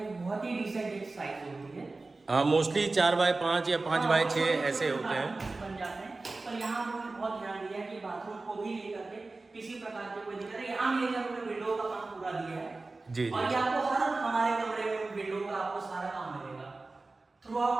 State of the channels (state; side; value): quieter; left; 3.4 dB